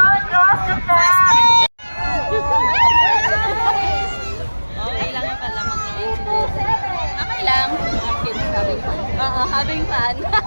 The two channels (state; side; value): inverted; both; correlation -1.00